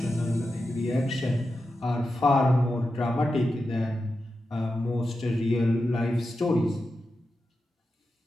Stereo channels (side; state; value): both; normal; correlation 0.90